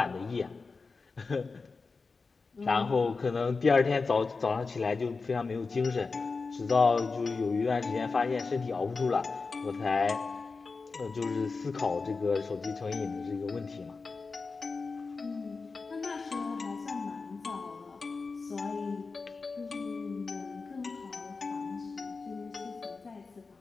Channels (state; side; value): quieter; right; 4.3 dB